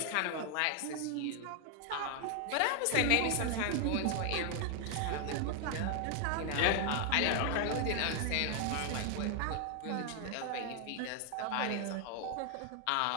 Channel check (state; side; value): different; both; correlation 0.00